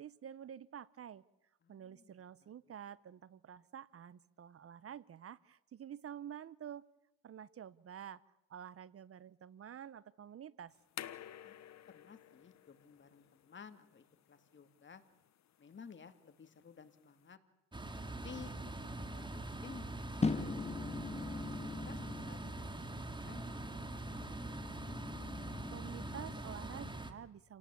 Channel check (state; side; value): normal; both; correlation 0.62